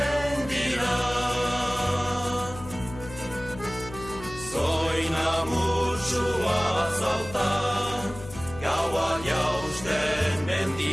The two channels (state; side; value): noise; left; hum, 14 dB below the sound